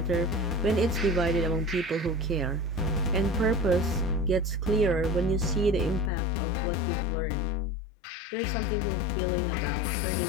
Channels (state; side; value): drops out; right; at 6.1 s